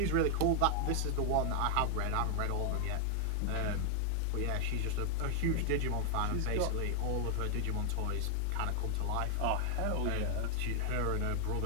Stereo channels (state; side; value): different; both; correlation 0.00